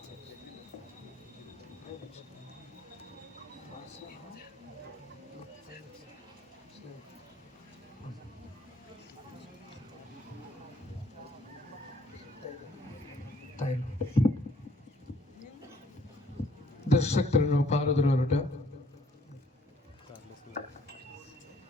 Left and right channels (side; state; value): both; normal; correlation 0.63